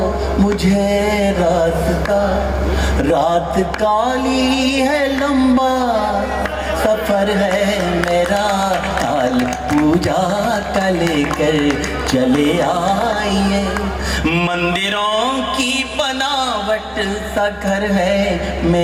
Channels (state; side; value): identical; both; correlation 1.00